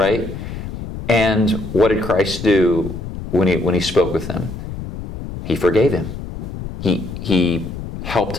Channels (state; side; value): noise; left; rumble, 9 dB below the sound